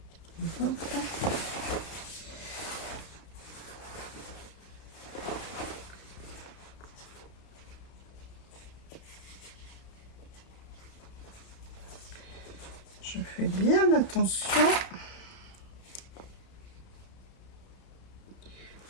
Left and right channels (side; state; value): right; late; 32 ms